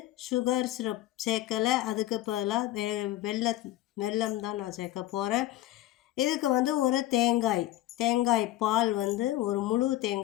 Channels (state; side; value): quieter; right; 15.1 dB